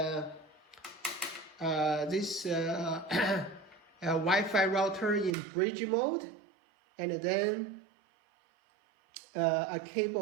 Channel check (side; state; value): left; drops out; at 5.3 s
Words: Wi-Fi router in bridge mode, and then a